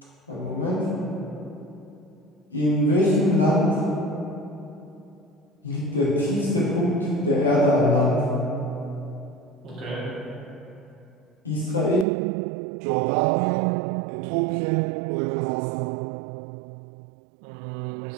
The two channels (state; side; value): drops out; left; at 12.1 s